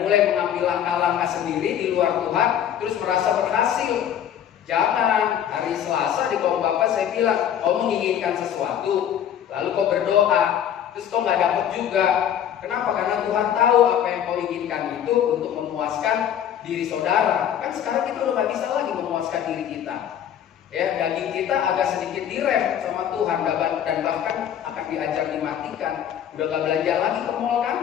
mulai mengambil langkah-langkah sendiri di luar Tuhan, terus merasa berhasil. Jangan. Hari Selasa di kaum Bapak saya bilang, kau menginginkan sesuatu, lalu kau berdoa, terus kau nggak dapat juga. Kenapa? Karena Tuhan tahu apa yang kau inginkan itu untuk memuaskan diri saudara. Kan sekarang kita udah nggak bisa lagi memuaskan diri kita. Ya, daging kita agak sedikit direm sama Tuhan dan bahkan akan diajar dimatikan. Udah gak belanja lagi ke mall kan?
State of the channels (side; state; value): right; quieter; 9.7 dB